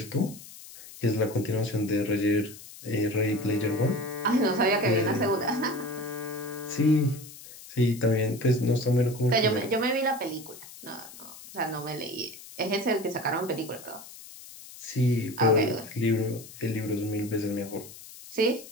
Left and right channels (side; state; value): left; noise; hiss, 17 dB below the sound